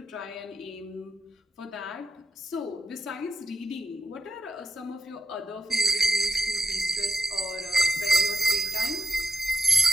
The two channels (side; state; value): both; normal; correlation 0.85